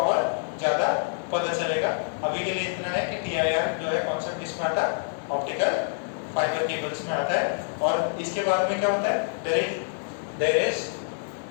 और ज्यादा पता चलेगा, अभी के लिए इतना है कि TIR जो है कॉन्सेप्ट किस में आता है, ऑप्टिकल फाइबर केबल्स में आता है। और इसके बाद में क्या होता है,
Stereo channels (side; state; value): right; silent; digital silence